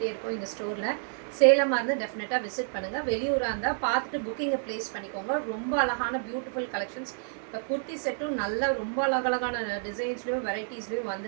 இருக்கோம் எங்கள் ஸ்டோரில். சேலமாக இருந்தால் டெஃபினட்டாக விசிட் பண்ணுங்கள். வெளியூராக இருந்தால் பார்த்துட்டு புக்கிங்கை ப்ளேஸ் பண்ணிக்கோங்க. ரொம்ப அழகான பியூட்டிஃபுல் கலெக்ஷன்ஸ். இப்போ குர்த்தி செட்டும் நல்ல ரொம்ப அழகழகான டிசைன்ஸ்லேயும் வெரைட்டிஸ்லேயும்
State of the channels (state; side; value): silent; left; digital silence